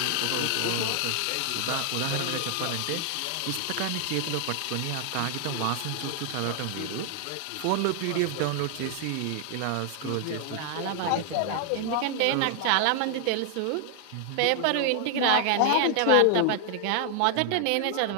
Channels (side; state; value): both; different; correlation 0.00